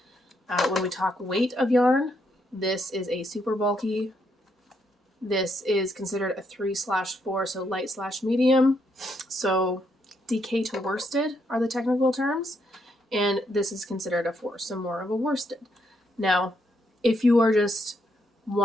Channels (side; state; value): both; normal; correlation 0.76